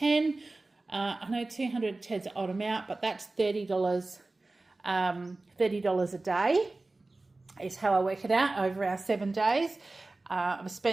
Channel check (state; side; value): quieter; left; 3.1 dB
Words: I know 210 is an odd amount, but that's $30. $30 a day is how I work it out over our 7 days. I've